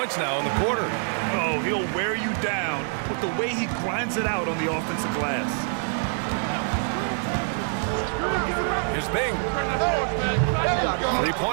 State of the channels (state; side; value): silent; left; 61 dB below the other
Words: now in the quarter. Oh, he'll wear you down with the way he grinds it out on the offensive glass. Here's Bing.